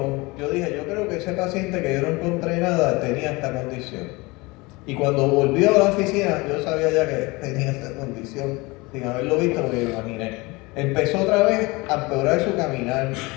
yo dije, yo creo que ese paciente que yo no encontré nada tenía esta condición. Y cuando volvió a la oficina, yo sabía ya que tenía esta condición, sin haberlo visto, porque lo imaginé. Empezó otra vez a empeorar su caminar,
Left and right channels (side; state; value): right; quieter; 24.2 dB